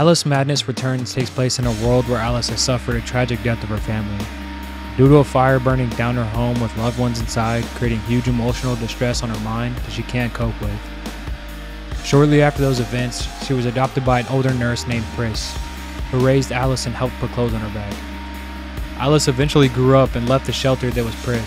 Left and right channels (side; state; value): both; identical; correlation 1.00